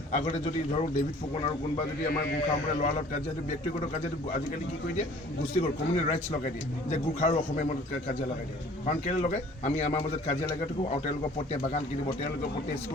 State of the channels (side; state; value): both; normal; correlation 0.51